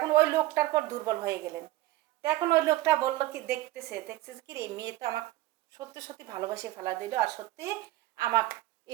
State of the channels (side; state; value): left; quieter; 16.6 dB